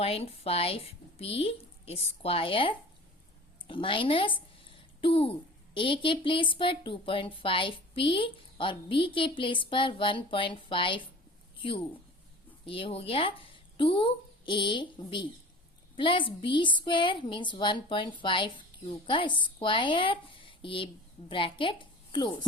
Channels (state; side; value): normal; both; correlation 0.40